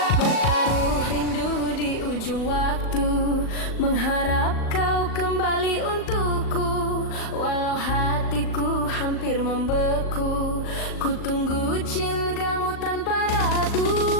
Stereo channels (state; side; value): late; right; 38 ms